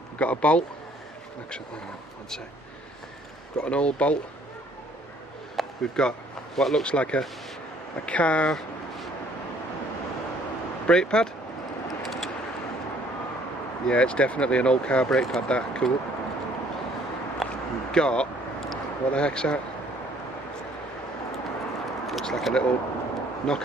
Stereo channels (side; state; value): both; normal; correlation 0.60